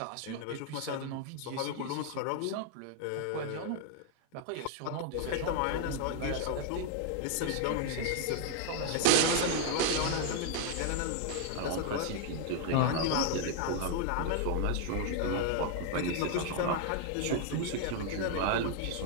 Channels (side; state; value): both; different; correlation 0.00